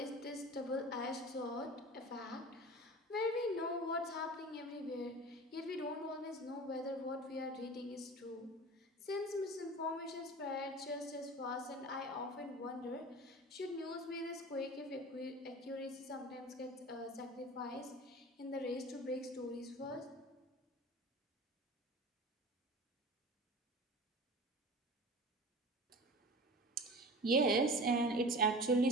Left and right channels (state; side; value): normal; both; correlation 0.36